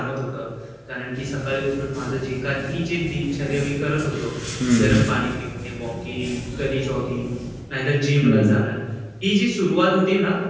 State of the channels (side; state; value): both; identical; correlation 1.00